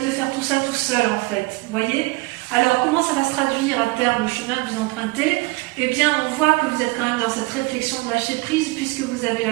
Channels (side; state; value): left; quieter; 23.2 dB